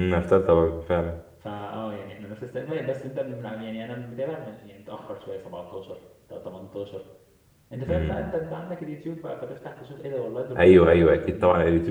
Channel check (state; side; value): identical; both; correlation 1.00